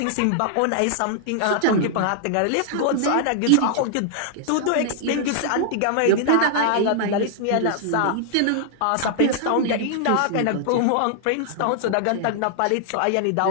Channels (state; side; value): different; both; correlation -0.01